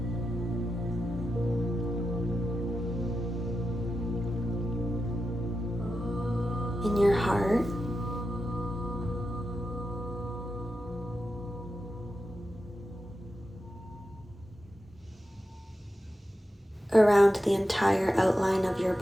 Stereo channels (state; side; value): normal; both; correlation 0.90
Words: In your heart. Around the entire outline of your